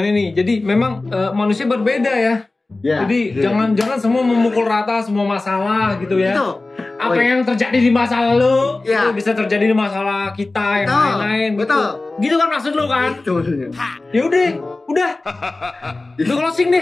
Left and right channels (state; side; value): quieter; right; 3.2 dB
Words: ini. Jadi memang manusia berbeda ya. Jadi jangan semua memukul rata semua masalah gitu ya. Itu. Apa yang terjadi di masa lalu itu bisa terjadi di masalah kita yang lain-lain. Betul. Gitu kan maksud lu kan? Itu maksudnya. Ya udah. Lu closing